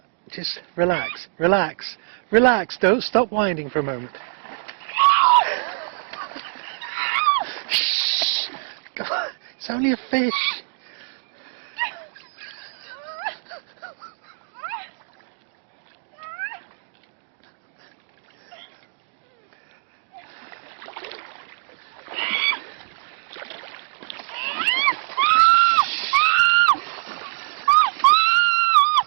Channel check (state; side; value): silent; left; 63 dB below the other